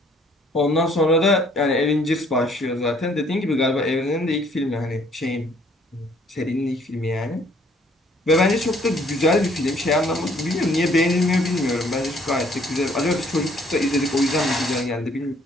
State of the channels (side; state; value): both; normal; correlation 0.62